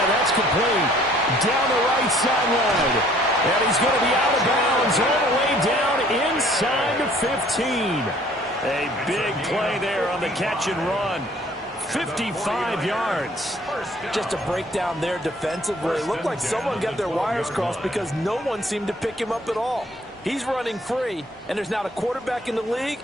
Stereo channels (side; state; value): both; normal; correlation 0.57